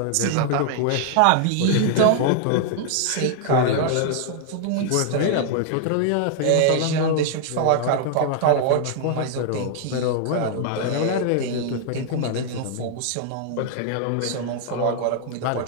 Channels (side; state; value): both; different; correlation 0.00